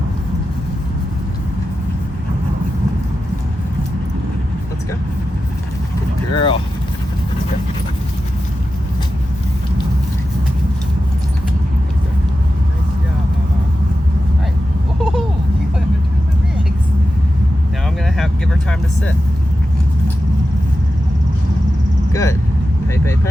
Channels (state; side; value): normal; both; correlation 0.91